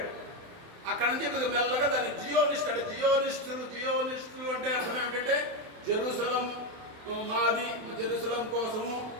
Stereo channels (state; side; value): late; left; 27 ms